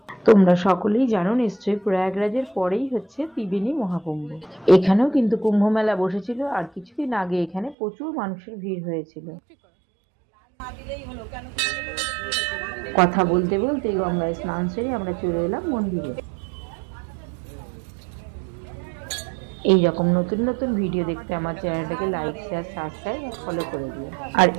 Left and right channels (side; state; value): left; drops out; at 7.8 s